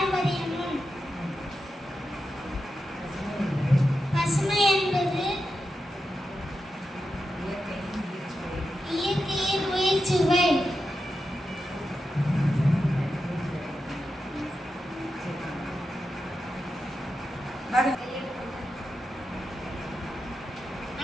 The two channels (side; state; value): both; normal; correlation 0.89